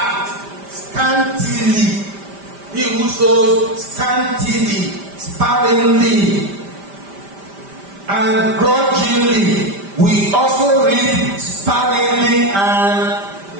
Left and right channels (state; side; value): late; left; 5.1 ms